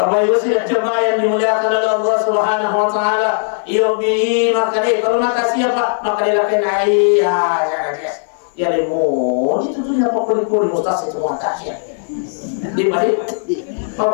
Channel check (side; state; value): right; silent; 56 dB below the other